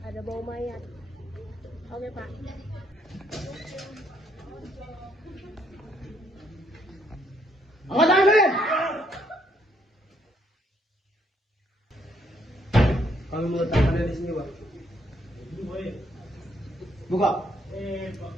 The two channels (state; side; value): normal; both; correlation 0.70